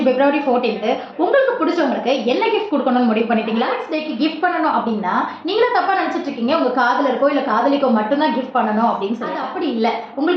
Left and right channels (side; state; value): both; identical; correlation 1.00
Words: பிப்ரவரி 14th உங்களுக்கு பிடிச்சவங்களுக்கு என்ன கிஃப்ட் குடுக்கணும்னு முடிவு பண்ணிட்டீங்களா? டேக்கு கிஃப்ட் பண்ணணும் அப்படின்னா, நீங்களே தப்பா நினைச்சிட்டு இருக்கீங்க. உங்க காதலருக்கோ, இல்ல காதலிக்கோ மட்டும் தான் கிஃப்ட் பண்ணணும் அப்படின்னு சொல்லி. அது அப்படி இல்ல.